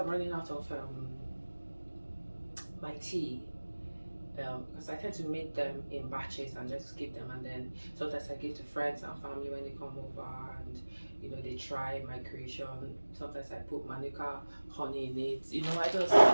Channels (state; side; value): inverted; both; correlation -1.00